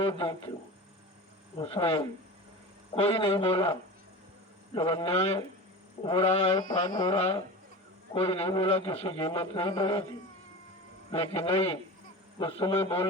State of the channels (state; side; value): normal; both; correlation 0.31